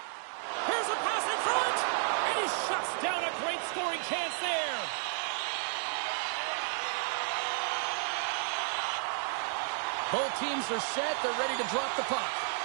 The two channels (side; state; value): left; silent; 56 dB below the other